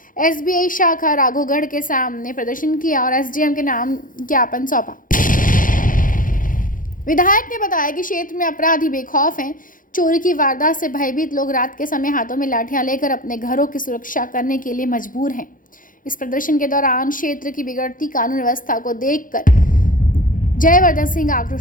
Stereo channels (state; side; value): late; right; 0.39 ms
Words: एसबीआई शाखा राघवगढ़ के सामने प्रदर्शन किया और एसडीएम के नाम ज्ञापन सौंपा। विधायक ने बताया कि क्षेत्र में अपराधी बेखौफ हैं। चोरी की वारदात से भयभीत लोग रात के समय हाथों में लाठियां लेकर अपने घरों की सुरक्षा करने के लिए मजबूर हैं। इस प्रदर्शन के दौरान क्षेत्र की बिगड़ती कानून व्यवस्था को देखकर जयवर्धन सिंह